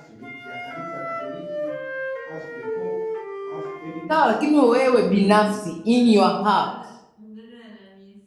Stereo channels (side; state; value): both; identical; correlation 1.00